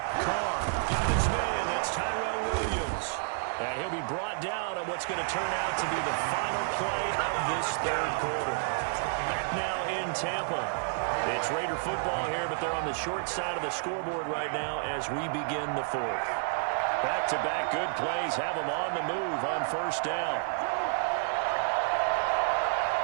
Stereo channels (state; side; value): silent; left; digital silence